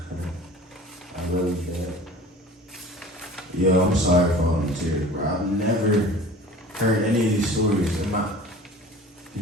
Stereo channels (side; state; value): both; normal; correlation 0.43